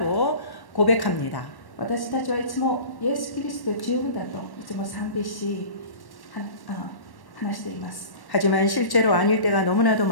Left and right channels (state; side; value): late; right; 1.1 ms